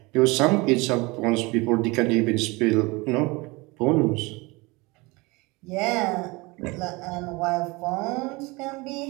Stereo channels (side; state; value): left; quieter; 24.6 dB